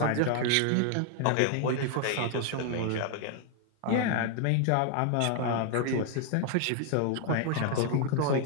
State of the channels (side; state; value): both; different; correlation 0.00